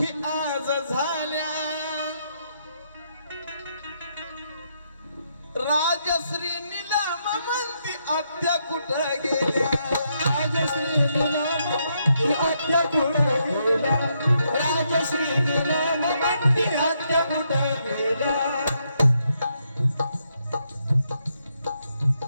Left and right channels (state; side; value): inverted; both; correlation -0.78